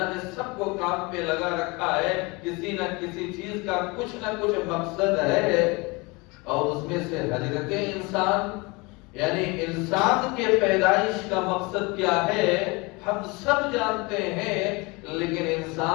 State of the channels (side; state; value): right; quieter; 26.3 dB